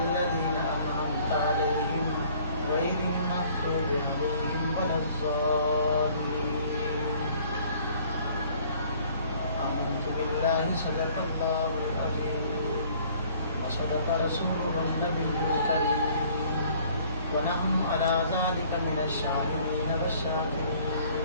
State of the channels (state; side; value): inverted; both; correlation -0.56